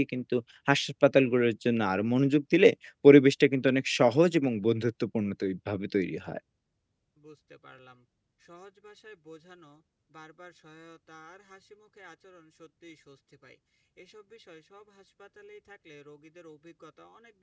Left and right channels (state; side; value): identical; both; correlation 1.00